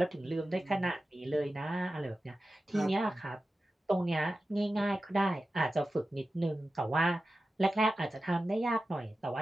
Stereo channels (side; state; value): both; normal; correlation 0.94